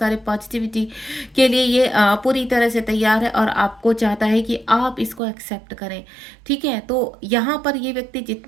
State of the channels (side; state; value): left; drops out; at 5.2 s